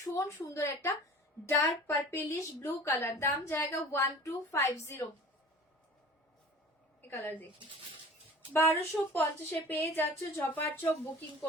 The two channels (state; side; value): normal; both; correlation 0.43